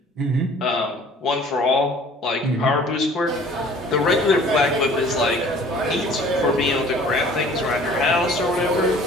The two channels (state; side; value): normal; both; correlation 0.50